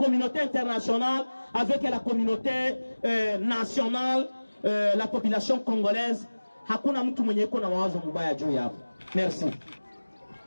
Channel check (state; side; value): inverted; both; correlation -1.00